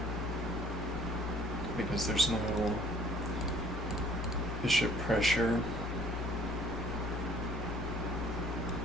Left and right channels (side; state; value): both; normal; correlation 0.55